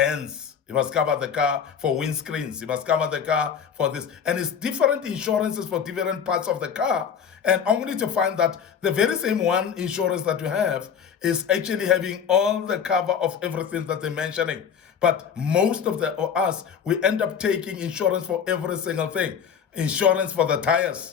You must cover the car for windscreens. You must cover the car for this. And it's different insurances for different parts of the car. And only to find that the very same one insurance that you have is actually having all the cover of everything that they're mentioning. But most of us, we end up taking insurance for every single thing. Insurance for the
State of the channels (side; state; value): right; quieter; 7.4 dB